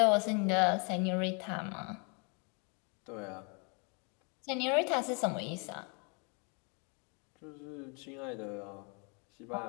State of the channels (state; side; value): quieter; right; 35.0 dB